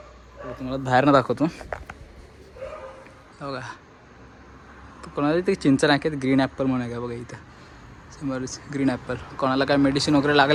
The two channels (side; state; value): both; identical; correlation 1.00